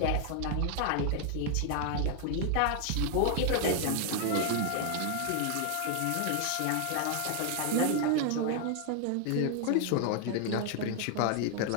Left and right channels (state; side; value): different; both; correlation 0.00